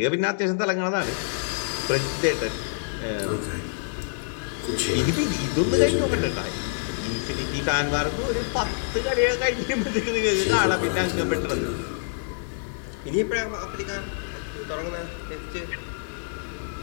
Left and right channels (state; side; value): silent; right; digital silence